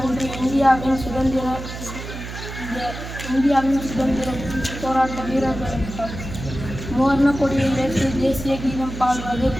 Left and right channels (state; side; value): noise; right; hum, 9 dB below the sound